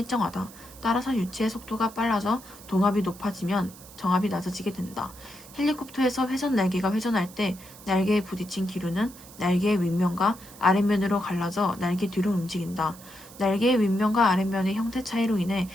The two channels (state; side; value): noise; right; hiss, 19 dB below the sound